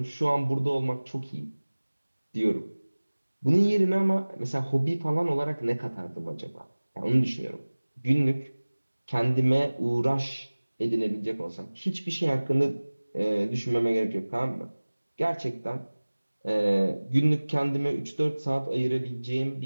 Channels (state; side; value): inverted; both; correlation -1.00